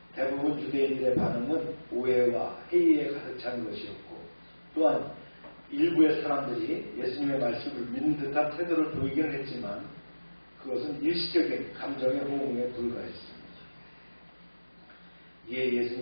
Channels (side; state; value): both; inverted; correlation -1.00